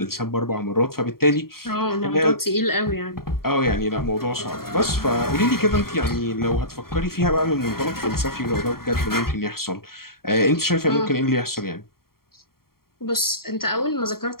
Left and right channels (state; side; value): late; right; 0.93 ms